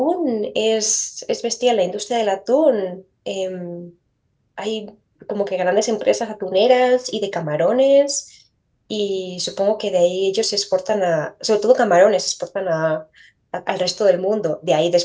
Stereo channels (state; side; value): identical; both; correlation 1.00